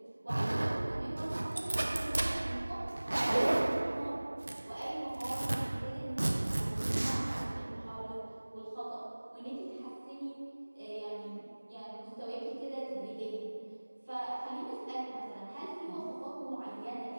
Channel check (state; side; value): inverted; both; correlation -1.00